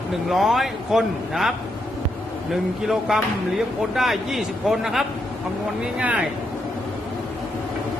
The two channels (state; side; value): normal; both; correlation 0.80